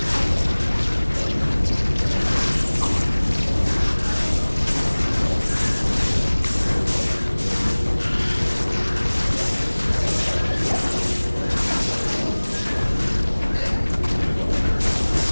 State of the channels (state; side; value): inverted; both; correlation -1.00